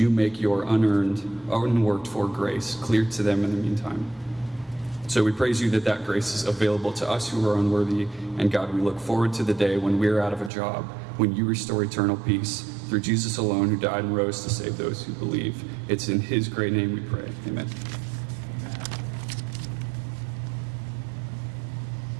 make your unearned, unworked for grace clear to them in the meantime? So we praise you that that grace is available to us who are unworthy, and God, we look forward to the day when we're out of a job, when you restore eternal peace through Jesus alone, who died and rose to save those who believe. It's in his great name we pray. Amen.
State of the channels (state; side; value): drops out; left; at 10.5 s